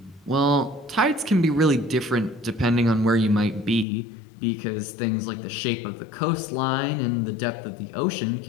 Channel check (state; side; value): drops out; right; at 3.9 s